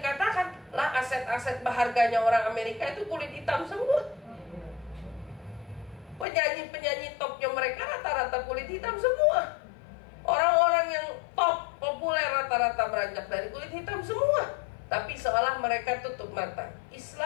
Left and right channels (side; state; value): right; drops out; at 6.2 s